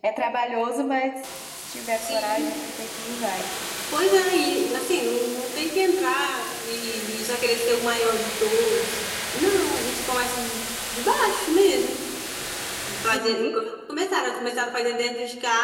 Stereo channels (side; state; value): both; identical; correlation 1.00